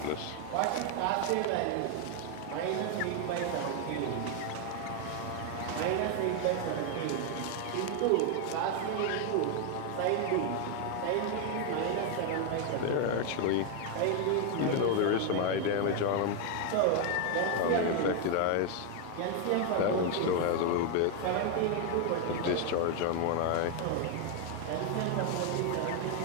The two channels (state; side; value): different; both; correlation 0.01